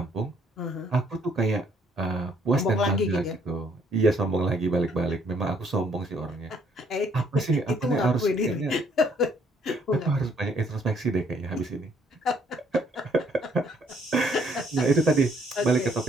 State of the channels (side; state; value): both; normal; correlation 0.65